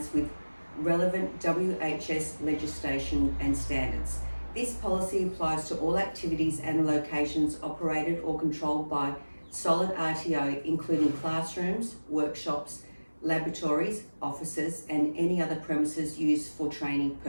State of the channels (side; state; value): both; inverted; correlation -1.00